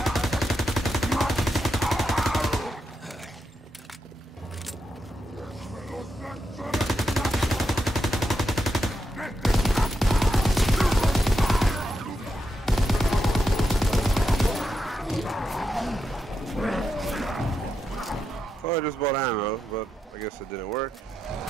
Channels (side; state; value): both; normal; correlation 0.85